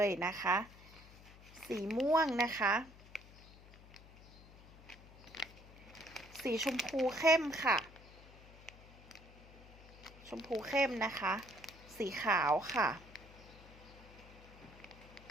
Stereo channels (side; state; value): left; noise; hum, 20 dB below the sound